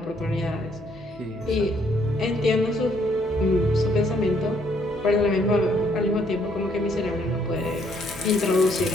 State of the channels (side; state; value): left; noise; hum, 21 dB below the sound